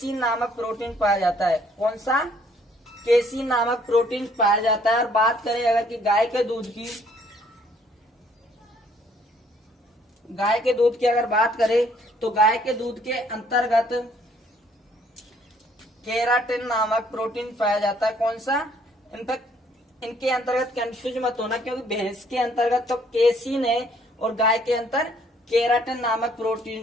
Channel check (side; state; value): both; normal; correlation 0.63